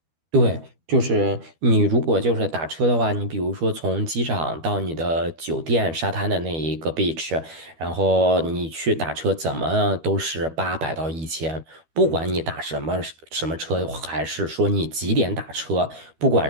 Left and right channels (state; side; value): late; left; 12 ms